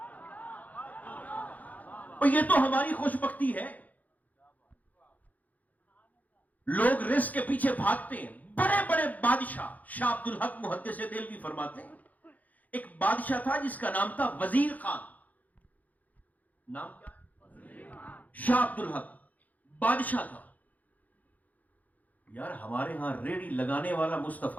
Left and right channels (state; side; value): late; right; 0.079 ms